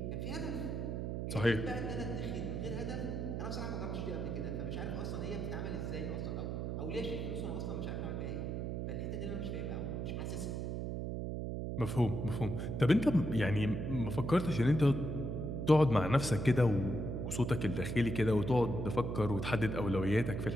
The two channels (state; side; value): noise; right; hum, 3 dB below the sound